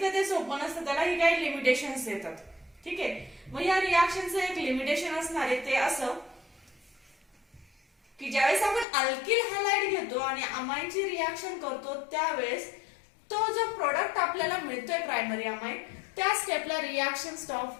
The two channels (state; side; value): drops out; right; at 8.8 s